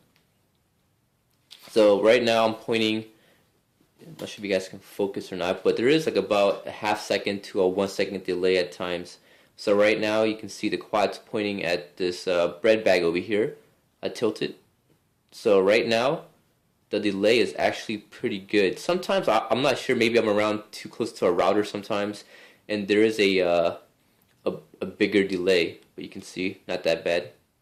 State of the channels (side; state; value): both; identical; correlation 1.00